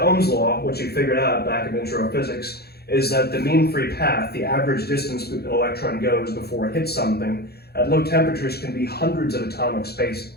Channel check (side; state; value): right; late; 0.46 ms